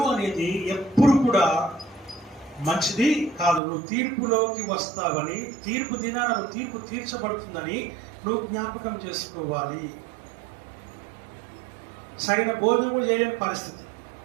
అనేది ఎప్పుడు కూడా మంచిది కాదు. నువ్వు తీర్పులోకి వస్తావని, తీర్పు దినాన నువ్వు తీర్పు తీర్చబడుతుందని నువ్వు జ్ఞాపకం చేసుకోవాలి. సరైన భోజనం కూడా చేయలేని పరిస్థితి,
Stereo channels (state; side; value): drops out; left; at 3.6 s